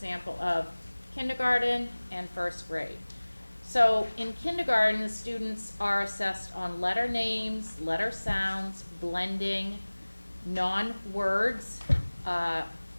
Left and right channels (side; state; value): both; inverted; correlation -1.00